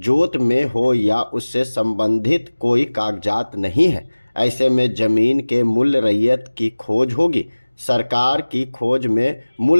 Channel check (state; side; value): inverted; both; correlation -1.00